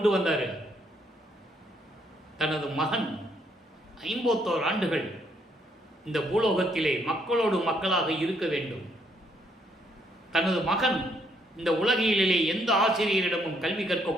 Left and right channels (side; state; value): both; normal; correlation 0.71